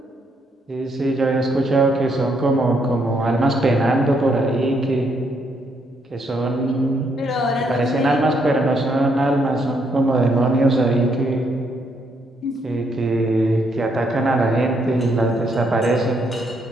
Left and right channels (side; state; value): both; normal; correlation 0.74